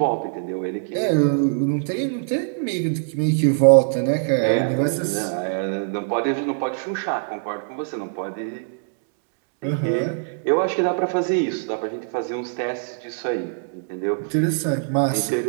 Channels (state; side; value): silent; left; digital silence